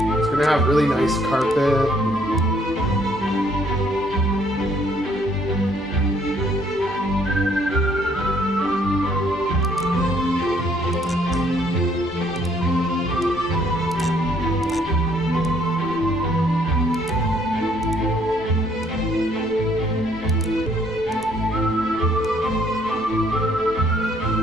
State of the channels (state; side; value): normal; both; correlation 0.65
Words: It's going to have really nice carpet.